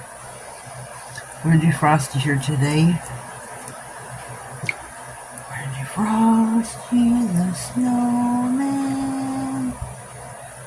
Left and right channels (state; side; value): identical; both; correlation 1.00